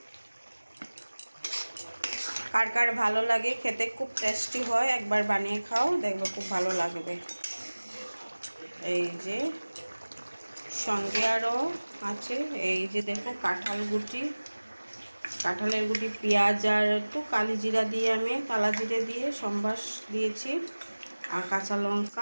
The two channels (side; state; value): both; inverted; correlation -1.00